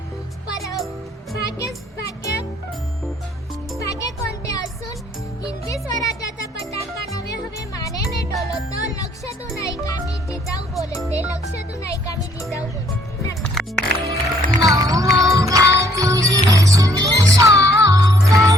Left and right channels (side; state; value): both; normal; correlation 0.64